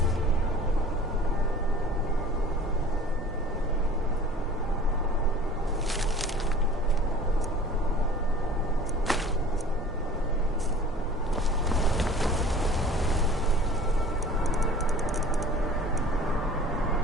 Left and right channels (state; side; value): normal; both; correlation 0.47